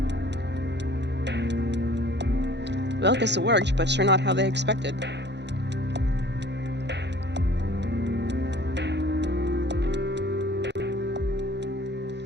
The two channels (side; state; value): left; late; 0.50 ms